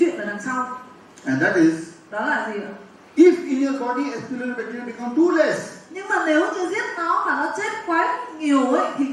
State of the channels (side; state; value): both; identical; correlation 1.00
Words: ở đằng sau. and that is, Đó là gì ạ? if in your body H. pylori bacteria become too less, Nhưng mà nếu như giết nó mà nó chết quá nhiều ấy, thì